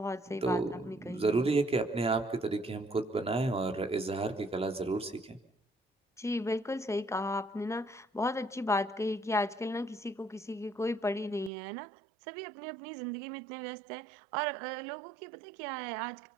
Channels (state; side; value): drops out; left; at 11.5 s